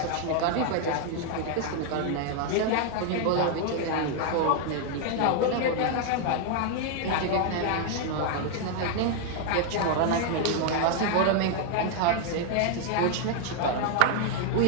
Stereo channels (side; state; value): both; different; correlation 0.00